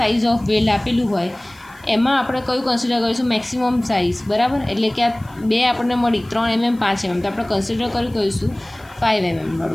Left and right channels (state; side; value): noise; left; hiss, 28 dB below the sound